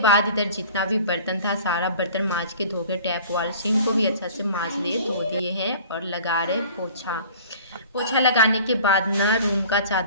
इधर जितना भी बर्तन था सारा बर्तन मांज के धो के टैप वाल सिंक को भी अच्छा से मांज दिए, धो दिए हैं। और लगा रहे पोछा लगाने के बाद ना रूम का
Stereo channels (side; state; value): both; inverted; correlation -0.45